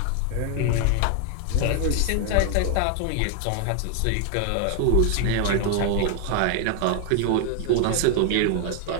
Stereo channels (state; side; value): different; both; correlation 0.00